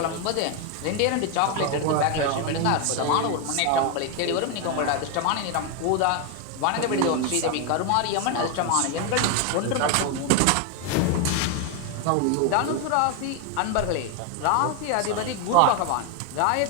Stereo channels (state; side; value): different; both; correlation 0.01